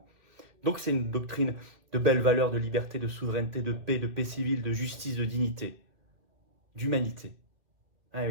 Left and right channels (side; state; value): left; late; 2.4 ms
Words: Donc c'est une doctrine de belles valeurs, de liberté, de souveraineté, de paix civile, de justice, de dignité, d'humanité. Ah